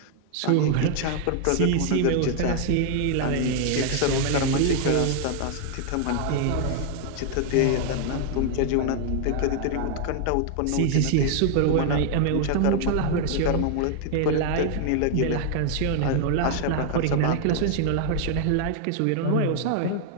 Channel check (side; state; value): both; different; correlation 0.00